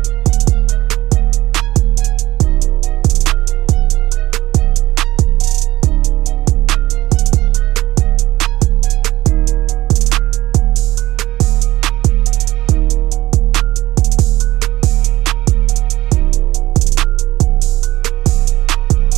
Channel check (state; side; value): quieter; left; 16.4 dB